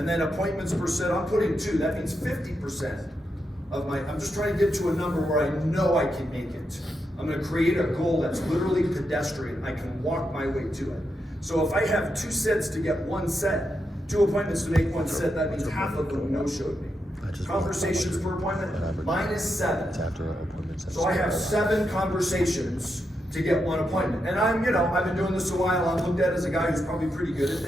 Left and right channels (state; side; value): normal; both; correlation 0.84